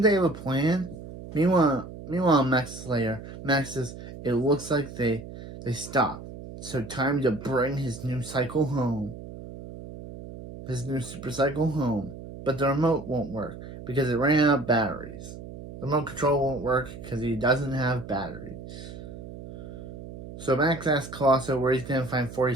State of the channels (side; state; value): right; noise; hum, 13 dB below the sound